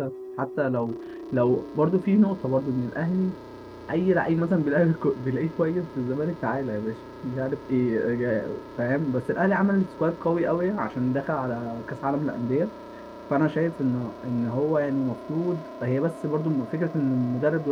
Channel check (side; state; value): both; identical; correlation 1.00